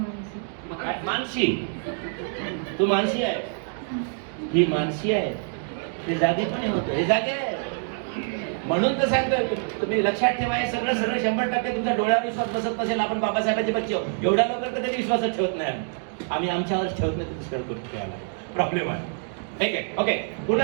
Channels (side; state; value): left; silent; 56 dB below the other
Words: काय मानसी. तू मानसी आहे. ही मानसी आहे. ते जागी पण होतं. हे जागे आहे. म्हणून तर सांगतो तुम्ही लक्षात ठेवा. हे सगळं 100% तुमच्या डोळ्यावर विश्वास बसत नसेल. आपण बाबासाहेबांचे बच्चे आहोत. एवढ्या लवकर कधी विश्वासच ठेवत नाही. आम्ही आमच्यावर ठेवत नाही. दुसऱ्या गोष्टी ठेवायला प्रॉब्लेम आहे. ठीक आहे. ओके.